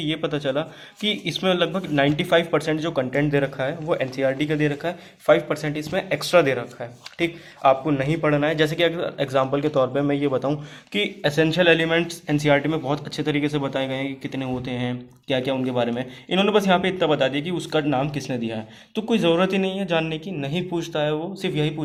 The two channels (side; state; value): both; identical; correlation 1.00